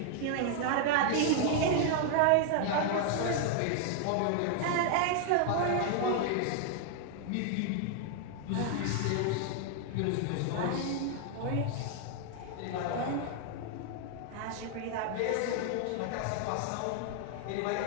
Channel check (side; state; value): both; different; correlation 0.00